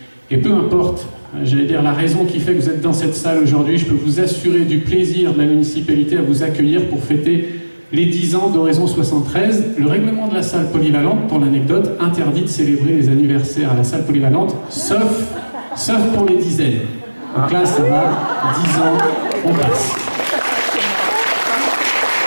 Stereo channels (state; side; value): inverted; both; correlation -1.00